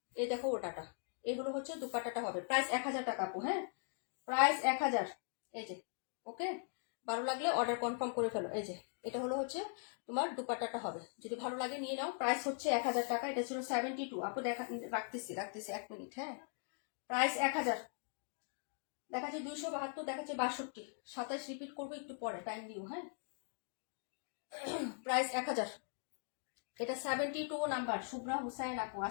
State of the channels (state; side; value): silent; right; 51 dB below the other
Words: এই দেখো ওটাটা, এগুলো হচ্ছে দুপাট্টাটা হবে। প্রাইস 1000 টাকা আপু। হ্যাঁ, প্রাইস 1000। এই যে ওকে, ভালো লাগলে অর্ডার কনফার্ম করে ফেলো। এই যে এটা হলো হচ্ছে তোমার দুপাট্টাটা হবে, যদি ভালো লাগে নিয়ে নাও। প্রাইস হচ্ছে 1000 টাকা। এটা ছিল 72 আপু। দেখা রাখতেছি 1 মিনিট। হ্যাঁ, প্রাইস 1000। দেখাচ্ছে 272, দেখাচ্ছে 62, 27 রিপিট করবো একটু পরে, টাইম দিও। হ্যাঁ, প্রাইস 1000। এটা 72 নাম্বার। শুভ্রা হুসাইন আপু,